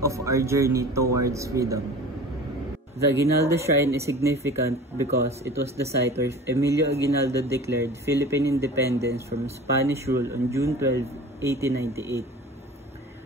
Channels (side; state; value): both; normal; correlation 0.39